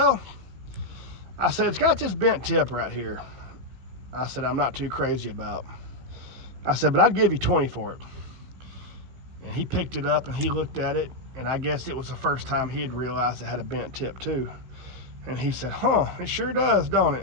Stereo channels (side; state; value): left; late; 16 ms